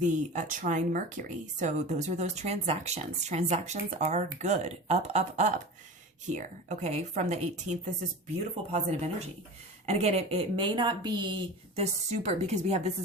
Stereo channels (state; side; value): normal; both; correlation 0.32